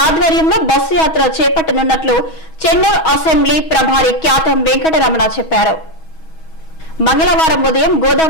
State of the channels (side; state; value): right; late; 6.2 ms